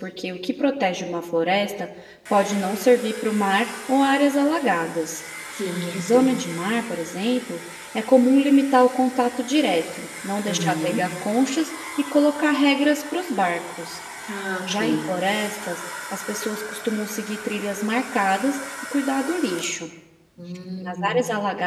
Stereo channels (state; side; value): identical; both; correlation 1.00